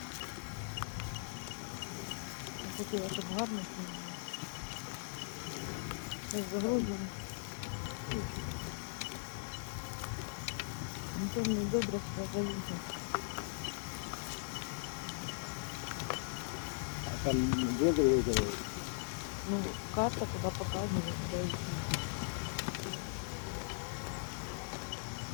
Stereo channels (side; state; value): right; silent; digital silence